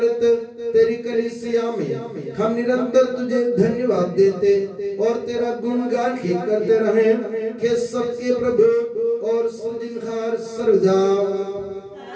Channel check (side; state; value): both; identical; correlation 1.00